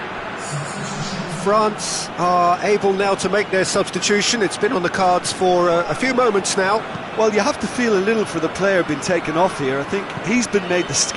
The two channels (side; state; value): both; identical; correlation 1.00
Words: France are able now to make their substitution. It's been on the cards for a few moments now. Well, you have to feel a little for the player being taken off here. I think he's been made the